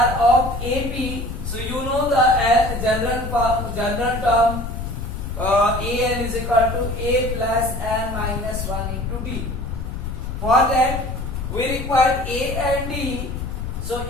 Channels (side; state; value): left; noise; rumble, 6 dB below the sound